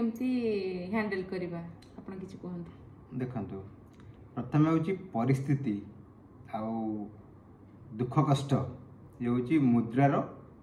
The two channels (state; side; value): identical; both; correlation 1.00